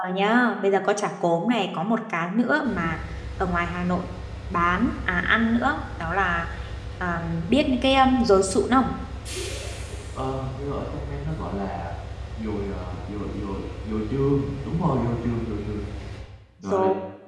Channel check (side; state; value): both; identical; correlation 1.00